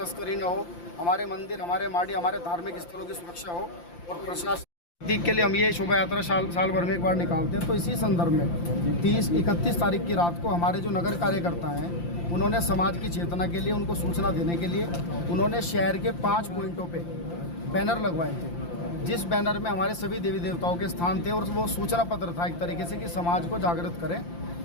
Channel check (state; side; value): late; right; 5.8 ms